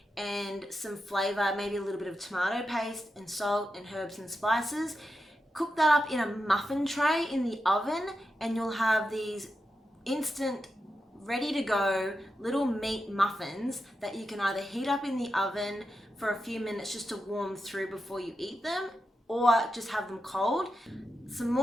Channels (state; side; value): normal; both; correlation 0.88